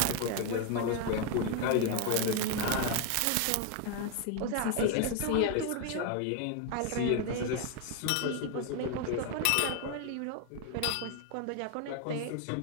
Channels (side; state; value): both; different; correlation 0.01